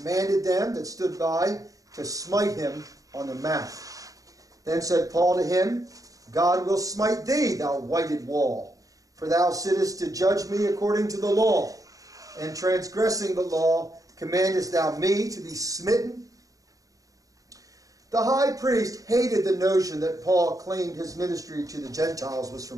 them that stood by to smite him on the mouth. Then said Paul to him, God will smite thee, thou whited wall, for thou sittest to judge me according to the law, and transgressing the law, commandest thou me to be smitten? The high priest hated the notion that Paul claimed his ministry to the Gentiles was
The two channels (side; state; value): left; late; 0.17 ms